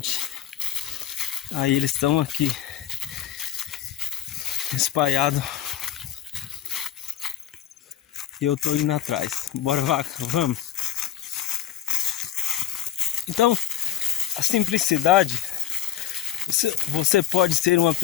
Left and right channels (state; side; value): quieter; right; 10.9 dB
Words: Aí eles estão aqui espalhados e eu tô indo atrás. Bora, vaca, vamos. Então, a simplicidade, você pode ser uma